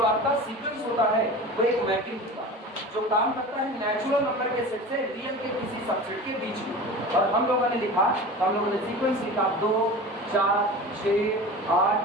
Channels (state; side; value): normal; both; correlation 0.34